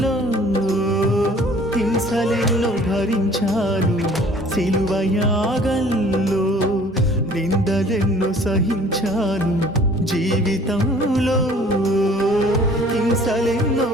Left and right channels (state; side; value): normal; both; correlation 0.52